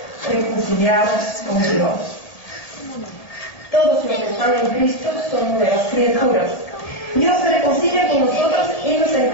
reconciliados con Dios. Todos los que están en Cristo son nuevas criaturas. Dios se reconcilia con nosotros y nos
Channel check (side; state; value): right; late; 1.8 ms